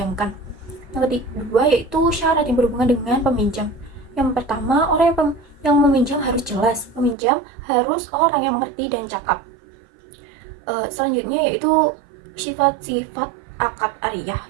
Yang kedua yaitu syarat yang berhubungan dengan peminjam. Yang pertama, orang yang meminjam harus jelas, peminjam harus orang yang mengerti dan cakap. Selanjutnya yaitu sifat-sifat akad ariyah.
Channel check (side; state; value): left; drops out; at 7.2 s